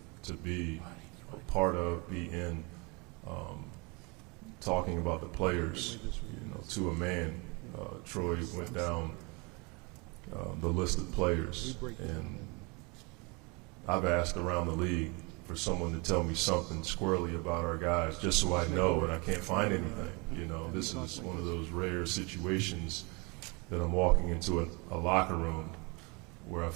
to be a part of, be in, talking about the players, you know, to a man. Troy went down the list of players, and I've asked around the league for someone to tell me something squirrely about our guys, just so I know, and I can't find anything. You know, this is one of those rare situations that I'm walking into a locker room where I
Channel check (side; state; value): left; quieter; 29.0 dB